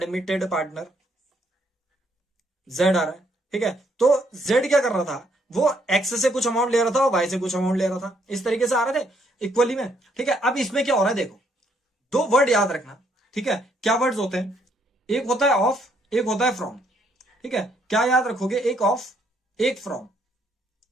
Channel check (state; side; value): normal; both; correlation 0.70